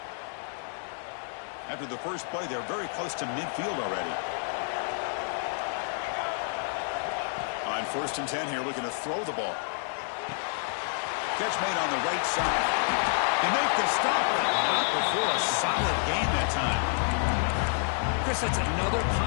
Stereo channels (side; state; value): right; silent; 59 dB below the other